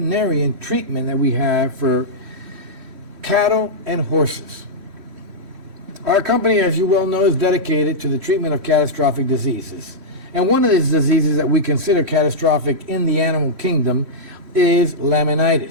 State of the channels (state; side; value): late; left; 3.6 ms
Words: treatment that we have for cattle and horses. Our company, as you well know, is dedicated to the treatment of catastrophic diseases. And one of these diseases that we consider catastrophic in the animal kingdom is